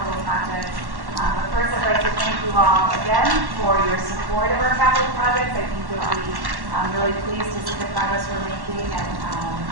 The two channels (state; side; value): late; left; 1.1 ms